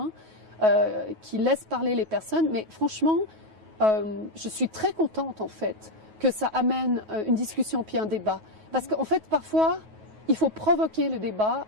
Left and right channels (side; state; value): left; late; 9.3 ms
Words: qui laisse parler les personnes. Mais franchement, je suis très contente en fait que ça amène une discussion puis un débat. Parce qu'en fait, parfois, il faut provoquer le débat